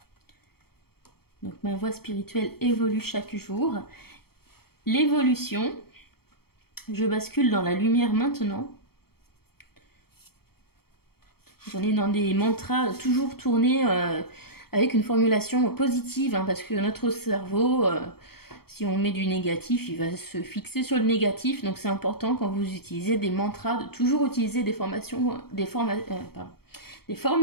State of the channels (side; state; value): right; late; 0.95 ms